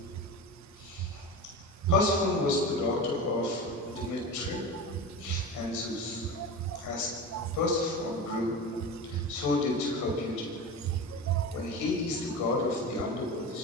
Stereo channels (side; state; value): both; normal; correlation 0.28